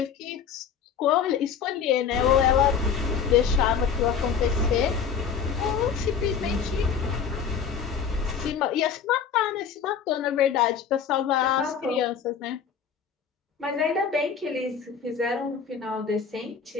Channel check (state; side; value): quieter; right; 6.9 dB